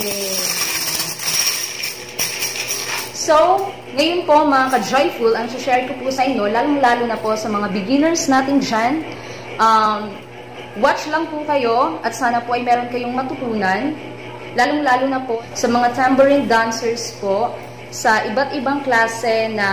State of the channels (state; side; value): identical; both; correlation 1.00